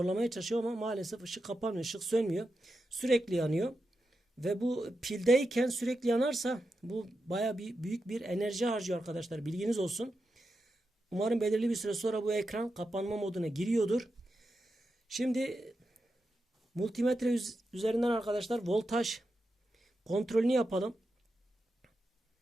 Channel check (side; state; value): both; normal; correlation 0.88